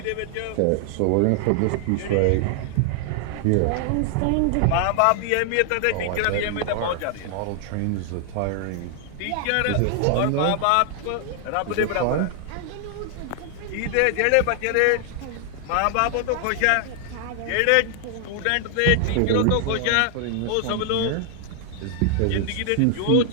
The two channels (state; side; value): different; both; correlation 0.00